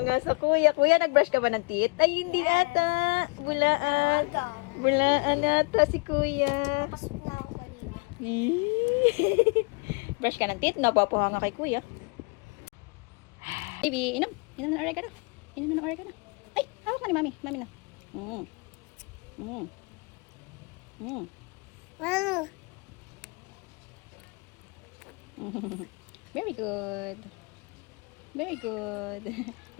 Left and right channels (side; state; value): right; quieter; 31.4 dB